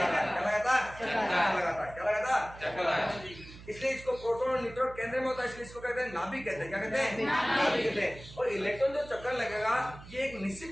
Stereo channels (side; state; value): right; noise; hum, 17 dB below the sound